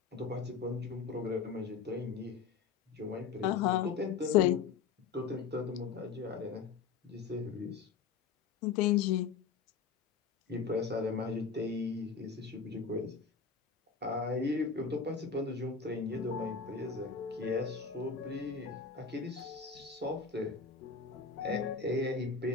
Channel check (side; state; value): right; quieter; 5.7 dB